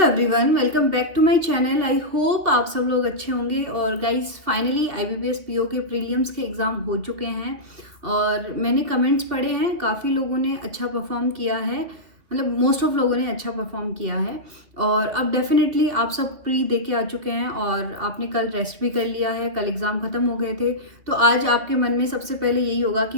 welcome back to my channel. I hope आप सब लोग अच्छे होंगे। और गाइस फाइनली आईबीपीएस पीओ के प्रीलिम्स के एग्ज़ाम हो चुके हैं और मैंने कमेंट्स पढ़े हैं, काफ़ी लोगों ने अच्छा परफॉर्म किया है, मतलब मोस्ट ऑफ लोगों ने अच्छा परफॉर्म किया है। और अब डेफिनेटली आप सब प्री दे के आ चुके हैं और आपने कल रेस्ट भी कर लिया है, कल एग्ज़ाम ख़त्म हो गए थे। तो आज आपके मन में सबसे पहले यही होगा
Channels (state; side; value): late; left; 2.5 ms